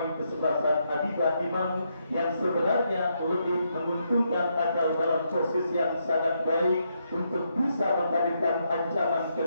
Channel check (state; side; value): inverted; both; correlation -0.79